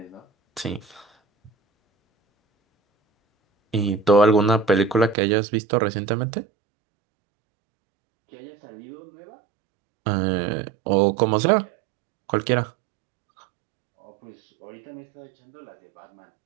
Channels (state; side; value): drops out; left; at 5.2 s